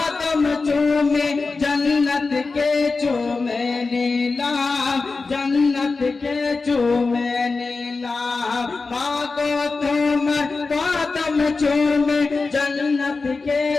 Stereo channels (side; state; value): right; quieter; 4.1 dB